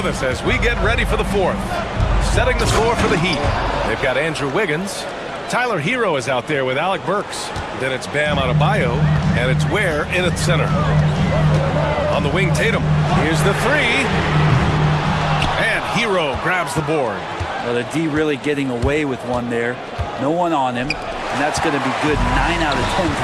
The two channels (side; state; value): both; identical; correlation 1.00